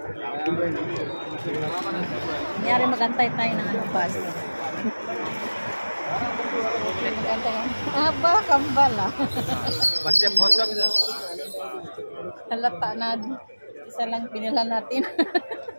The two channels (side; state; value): both; inverted; correlation -1.00